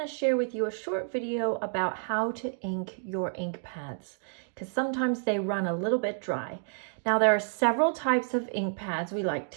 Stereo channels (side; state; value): left; silent; digital silence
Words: share with you a short video about how to ink your ink pads, because sometimes they run a little bit dry. Now there are several types of ink pads we like